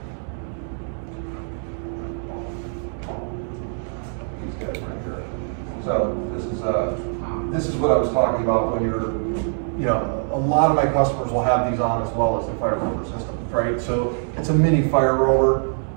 These guys right here. So this is what I was talking about when you're, you know, a lot of my customers will have these on as well as the fire rover system, right? So it's a mini fire rover.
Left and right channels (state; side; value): silent; left; digital silence